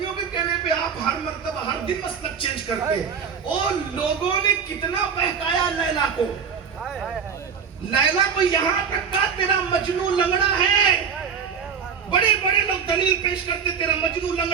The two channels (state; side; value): quieter; left; 6.8 dB